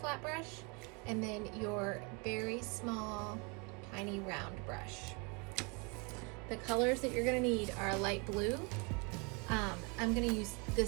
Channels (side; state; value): left; quieter; 31.6 dB